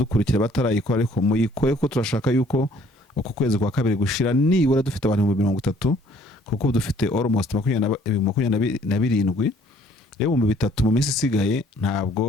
batarayikora, ariko muyikoye ko turashaka yuko uko kwezi kwa kabiri gushira nibura dufite abantu 30, kuko dufite almost 27. Rero mu bitatu mu minsi isigaye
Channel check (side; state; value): both; normal; correlation 0.59